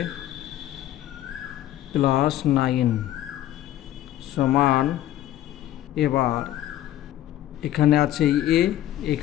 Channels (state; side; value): quieter; right; 13.3 dB